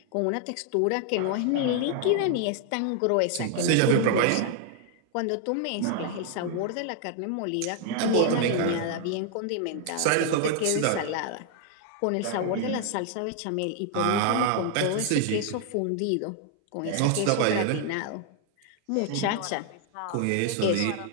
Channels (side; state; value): both; different; correlation 0.00